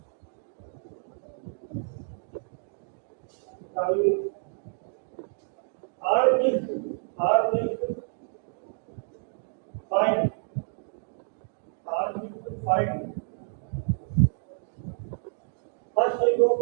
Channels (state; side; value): silent; left; digital silence